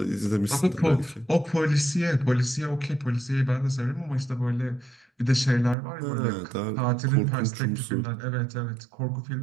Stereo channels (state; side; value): drops out; left; at 5.8 s